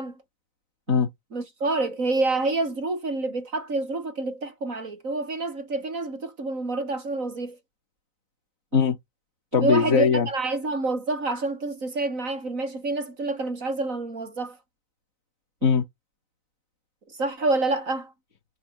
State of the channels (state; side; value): late; left; 3.9 ms